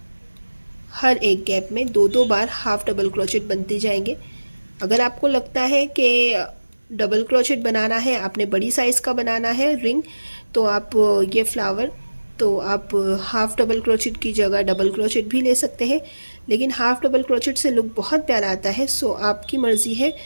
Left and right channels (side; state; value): both; inverted; correlation -1.00